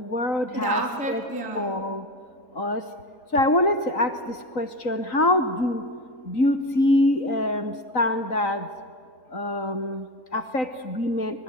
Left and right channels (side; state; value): right; late; 3.9 ms